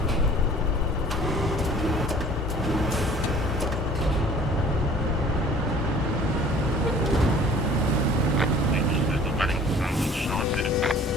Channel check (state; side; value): normal; both; correlation 0.50